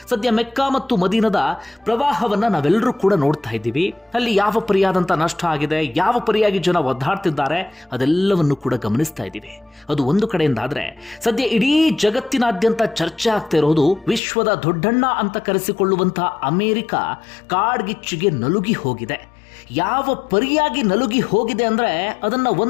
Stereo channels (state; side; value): drops out; right; at 14.2 s